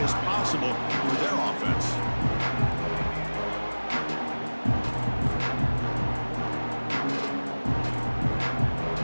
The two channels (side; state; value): both; inverted; correlation -1.00